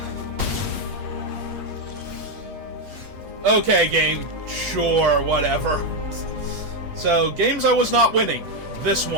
Okay, game. Sure, whatever. So, games I was not winning. This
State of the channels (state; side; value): late; left; 8.5 ms